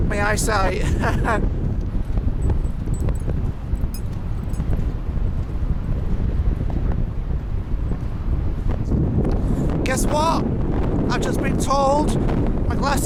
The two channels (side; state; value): both; identical; correlation 1.00